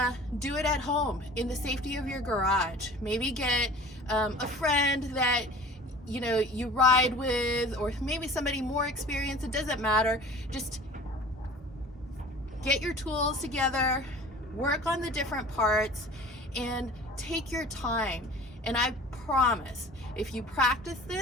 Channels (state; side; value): normal; both; correlation 0.44